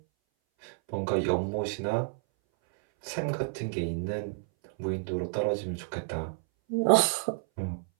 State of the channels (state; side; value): silent; left; 58 dB below the other